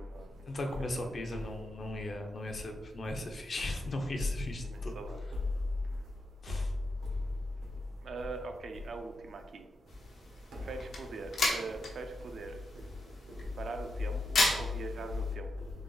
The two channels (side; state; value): both; normal; correlation 0.86